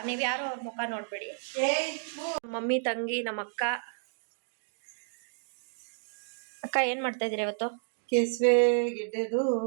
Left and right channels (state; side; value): silent; left; digital silence